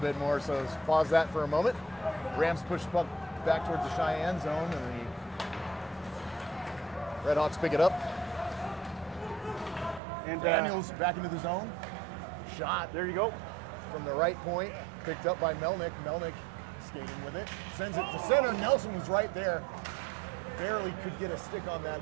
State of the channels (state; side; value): drops out; left; at 10.0 s